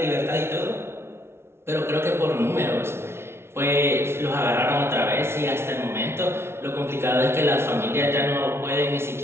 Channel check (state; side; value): late; left; 0.12 ms